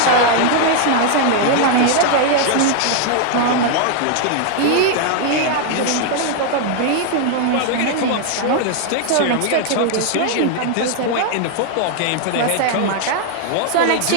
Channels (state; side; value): different; both; correlation 0.00